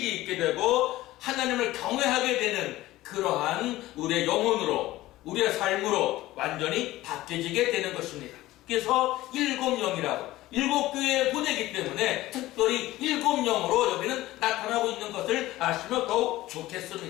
있게 되고 하나님을 경외하게 되는 그러한 우리의 영혼으로 우리의 삶으로 완전히 바뀌어지게 되는 것입니다. 그래서 7영이라고 7교회에 보내기 때문에 특별히 7영으로 여기는 나타나고 있는 아시면 더욱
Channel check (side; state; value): right; quieter; 16.8 dB